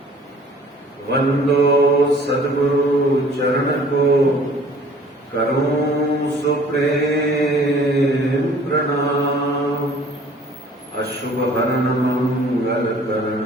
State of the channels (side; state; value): both; normal; correlation 0.52